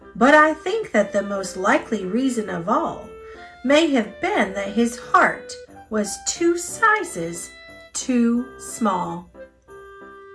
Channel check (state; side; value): identical; both; correlation 1.00